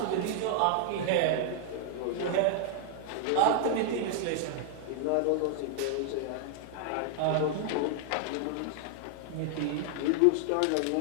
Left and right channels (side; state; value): both; different; correlation -0.01